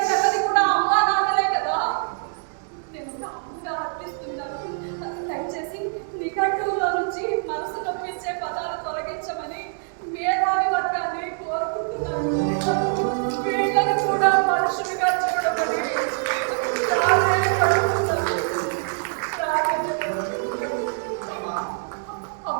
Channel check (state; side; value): silent; left; digital silence